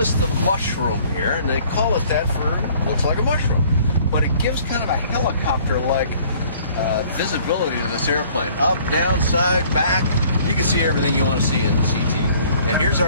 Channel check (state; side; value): inverted; both; correlation -0.56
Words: the mushroom here, and they call it that for looks like a mushroom. But it gives kind of a helicopter-like visibility to this airplane. Up, down, side, back. You can see everything you want to see in the CT. And here's